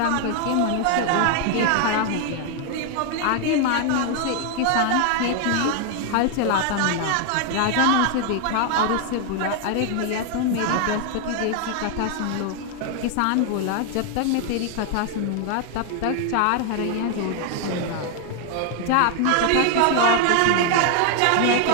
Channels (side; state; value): both; different; correlation 0.00